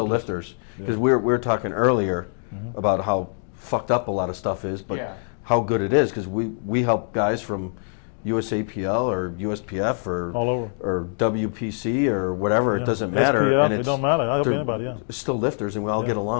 lifters. lifters. Because Yeah. we were talking earlier about how fucked up a lot of stuff is, but Yeah. how good it is. Because we help guys from USAPL or USPF All over. or WPC or whatever. Yeah. It doesn't matter. SPF, And it it's don't matter. I help they're anybody, yeah. still lifters, and we all Yeah. get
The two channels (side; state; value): right; silent; 61 dB below the other